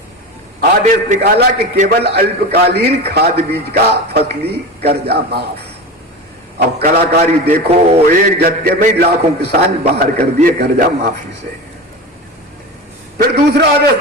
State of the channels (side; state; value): both; normal; correlation 0.26